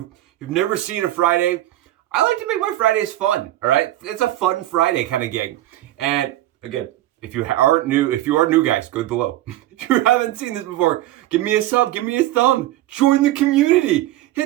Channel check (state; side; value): quieter; left; 15.0 dB